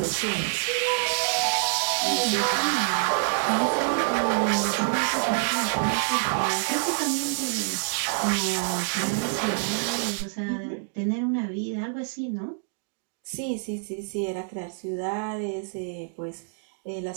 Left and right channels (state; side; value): silent; left; digital silence